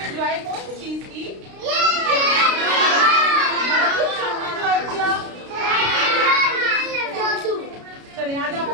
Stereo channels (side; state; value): left; late; 32 ms